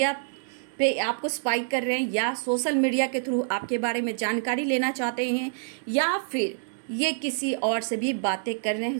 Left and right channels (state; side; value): silent; left; digital silence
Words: पे आपको स्पाई कर रहे हैं, या सोशल मीडिया के थ्रू आपके बारे में जानकारी लेना चाहते हैं, या फिर ये किसी और से भी बातें कर रहे